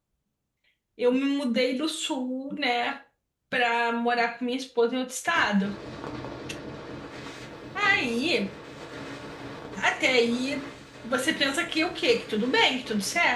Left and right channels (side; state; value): both; identical; correlation 1.00